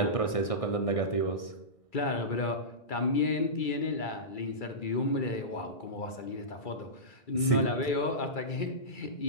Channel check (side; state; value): right; late; 1.6 ms